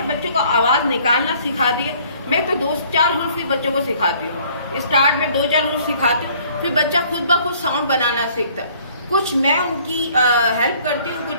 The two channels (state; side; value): inverted; both; correlation -0.58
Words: بچوں کو آواز نکالنا سکھا دیا. میں تو 2-4 حروف ہی بچوں کو سکھاتی ہوں، اسٹارٹ میں 2-4 حروف سکھاتی ہوں، پھر بچہ خود بخود ساؤنڈ بنانا سیکھتا ہے. کچھ میں ان کی ہیلپ کرتی ہوں،